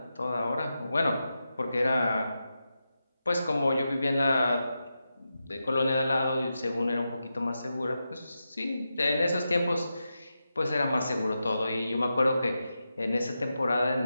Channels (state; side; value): inverted; both; correlation -0.89